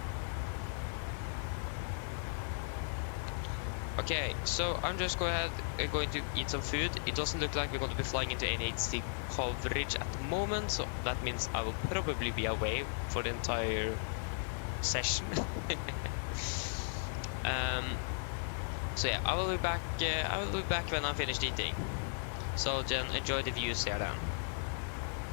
Okay, so I'm just going to eat some food. It doesn't look like we're going to be flying into any HD coverage at the moment, so that means I will probably be away for the entire session. So yeah, I will be back. I will be back when I'm finished eating. So then enjoy the views here then.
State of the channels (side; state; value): right; silent; 54 dB below the other